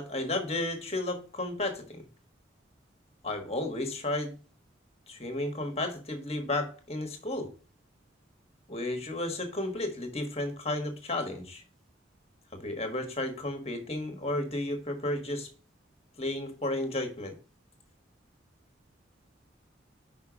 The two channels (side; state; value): both; normal; correlation 0.33